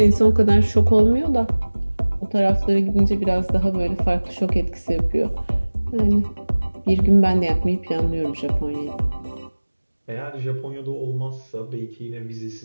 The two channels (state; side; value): inverted; both; correlation -1.00